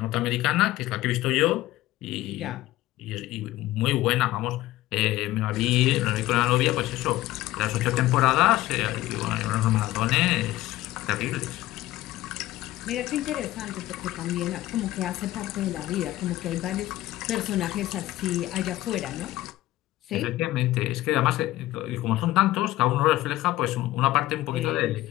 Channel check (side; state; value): right; quieter; 16.0 dB